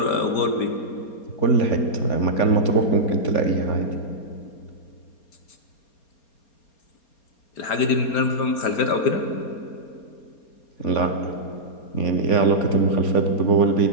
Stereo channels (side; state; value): right; late; 4.3 ms